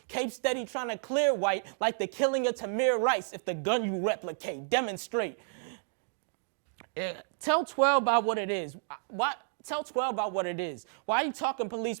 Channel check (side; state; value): left; silent; digital silence